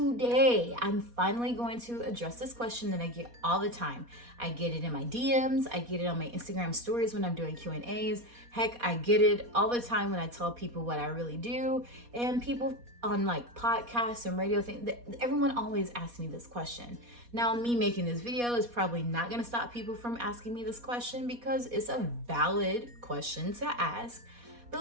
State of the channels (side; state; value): left; late; 4.2 ms